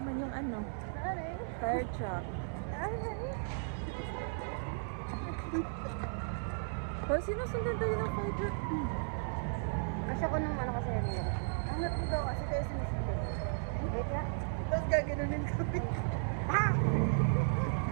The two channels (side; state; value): left; silent; 54 dB below the other